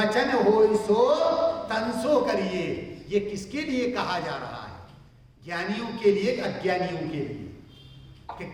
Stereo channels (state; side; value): identical; both; correlation 1.00